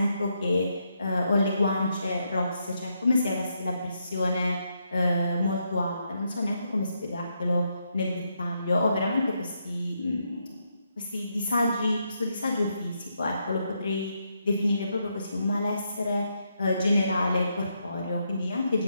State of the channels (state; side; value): inverted; both; correlation -0.80